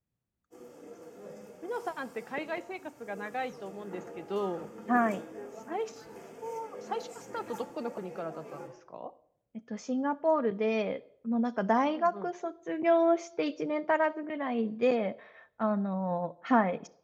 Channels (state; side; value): identical; both; correlation 1.00